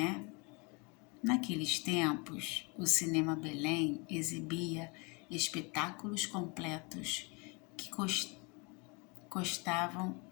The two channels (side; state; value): right; quieter; 30.6 dB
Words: Naqueles tempos, o Cinema Belém exibia espetáculos completos que constavam